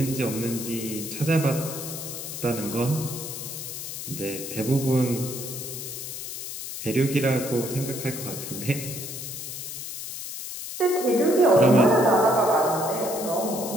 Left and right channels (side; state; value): left; noise; hiss, 8 dB below the sound